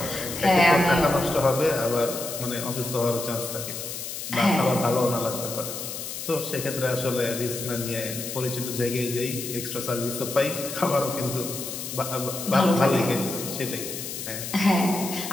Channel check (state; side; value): noise; left; hiss, 7 dB below the sound